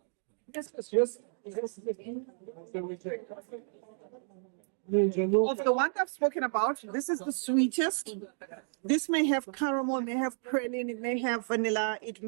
Of the one I've spoken about, this is the sweetest. This may have caramel, may have praline, it may have vanilla, it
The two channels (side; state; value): left; silent; digital silence